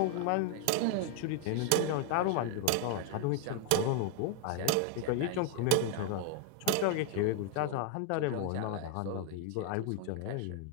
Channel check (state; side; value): different; both; correlation 0.00